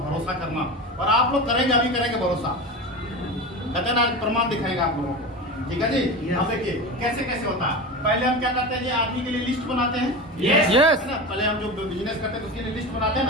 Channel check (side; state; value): both; normal; correlation 0.26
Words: भरोसा करना। और आप लोग करेंगे, अभी करेंगे भरोसा। कहते हैं ना, प्रमाण दिखाएगा आप लोगों को। ठीक है जी। अब देखिए कैसे कैसे होता है। पहले हम क्या करते हैं जी, आदमी के लिए लिस्ट बनाते हैं। Yes yes. है ना, पहले हम जो बिजनेस करते हैं तो उसके लिए लिस्ट बनाते हैं